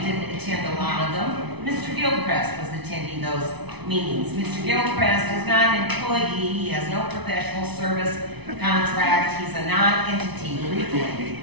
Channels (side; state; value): left; late; 0.99 ms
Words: didn't attend a lot of them. Mr. Gilchrist was attending those meetings. Mr. Gilchrist is not an employee, he has no professional service contract, he's a non-entity legally.